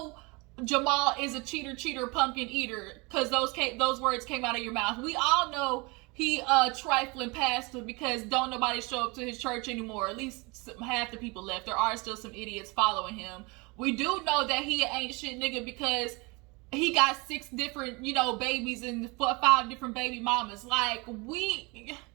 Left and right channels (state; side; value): quieter; left; 27.2 dB